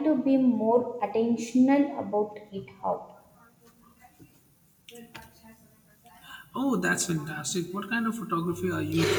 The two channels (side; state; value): both; identical; correlation 1.00